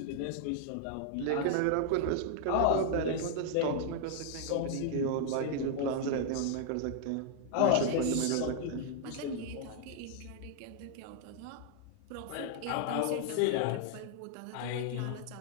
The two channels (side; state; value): both; different; correlation 0.00